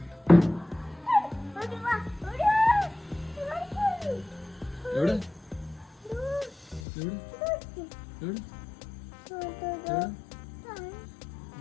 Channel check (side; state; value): right; drops out; at 6.9 s